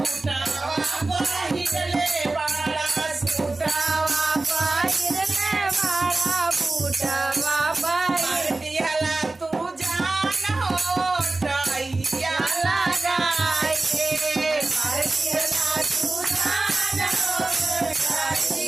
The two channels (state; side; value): quieter; left; 3.2 dB